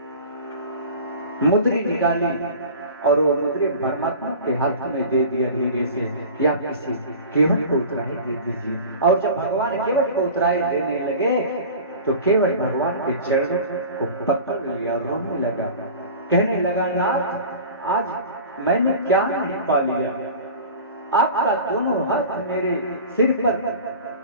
मुद्री निकाली और वो मुद्री परमात्मा के हाथ में दे दिया धीरे से कि आप किसी केवट को उतराई दे दीजिए। और जब भगवान केवट को उतराई देने लगे तो केवट भगवान के चरणों को पकड़ लिया, रोने लगा, कहने लगा नाथ आज मैंने क्या नहीं पा लिया। आपका दोनों हाथ मेरे सिर पर,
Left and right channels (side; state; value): both; inverted; correlation -0.38